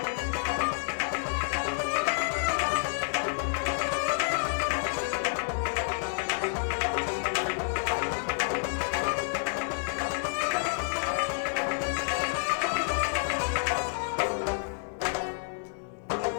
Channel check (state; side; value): silent; right; digital silence